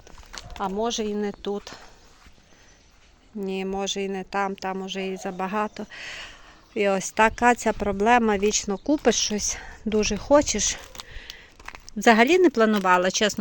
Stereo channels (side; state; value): both; identical; correlation 1.00